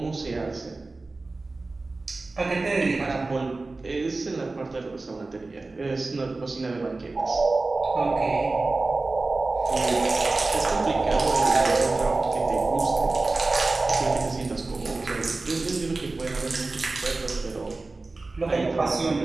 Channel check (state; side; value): quieter; left; 3.4 dB